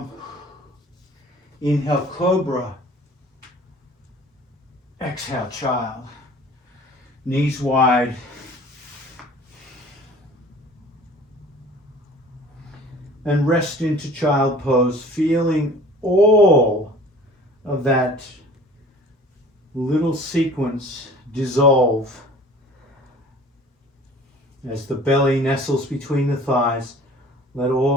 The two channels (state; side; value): normal; both; correlation 0.47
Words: Inhale, cobra. Exhale, child. Knees wide. And rest into child pose, feeling all of that little sequence dissolve as the belly nestles between the thighs. Let